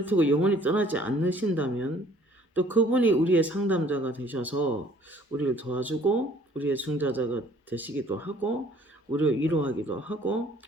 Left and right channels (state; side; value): normal; both; correlation 0.57